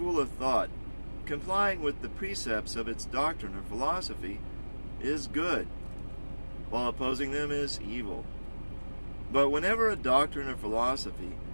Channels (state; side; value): inverted; both; correlation -1.00